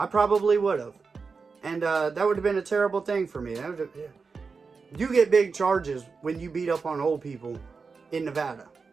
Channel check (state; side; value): quieter; left; 4.8 dB